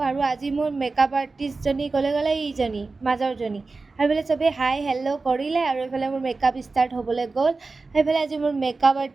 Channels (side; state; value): left; quieter; 3.8 dB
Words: আৰু আজি মোৰ মেকআপ আৰ্টিষ্টজনী ক'লে এইজনী মাজৰজনী। আৰু এইফালে চবেই হাই হেল্ল' কৰিলে আৰু এইফালে মোৰ মেকআপ ষ্টাৰ্ট হ'বলৈ গ'ল। সেইফালে আজি মোৰ মেকআপ